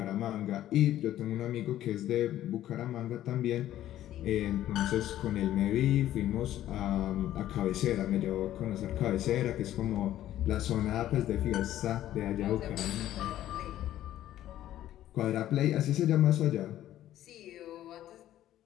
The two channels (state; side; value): quieter; right; 12.9 dB